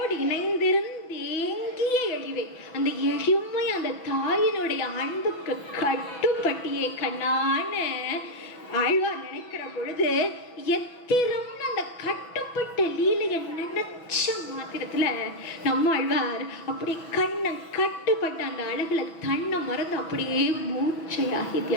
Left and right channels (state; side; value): late; right; 6.1 ms